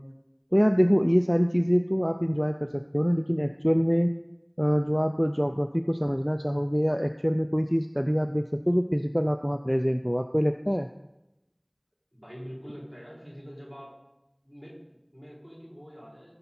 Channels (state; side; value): identical; both; correlation 1.00